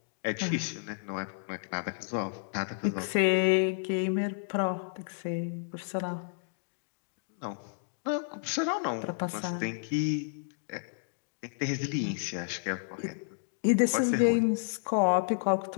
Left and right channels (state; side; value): silent; right; digital silence